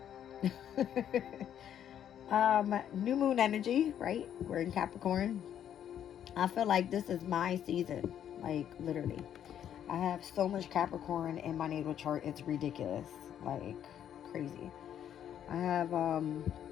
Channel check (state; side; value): quieter; right; 9.8 dB